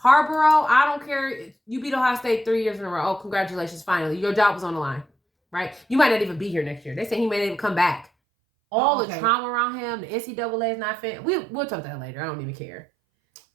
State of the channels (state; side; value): drops out; left; at 8.1 s